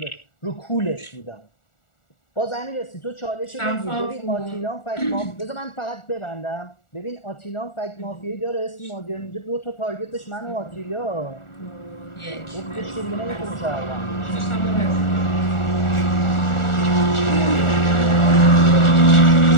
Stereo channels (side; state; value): right; late; 1.4 ms